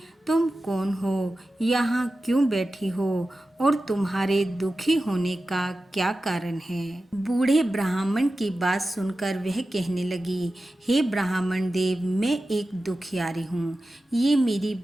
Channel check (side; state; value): both; normal; correlation 0.94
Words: तुम कौन हो, यहाँ क्यों बैठी हो और तुम्हारे दुखी होने का क्या कारण है। बूढ़े ब्राह्मण की बात सुनकर वह कहने लगी, हे ब्राह्मण देव, मैं एक दुखियारी हूँ। ये मेरी